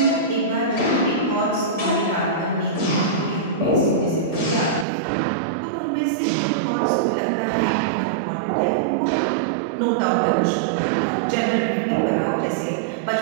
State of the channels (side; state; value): left; drops out; at 4.9 s